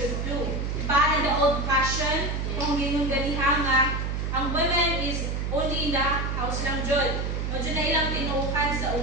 do. Pa in the old-fashioned, kung ginong ganihan nga, ang women is only in the house lang jud. Medyo na ilang tinuukan sa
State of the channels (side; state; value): right; noise; hum, 1 dB below the sound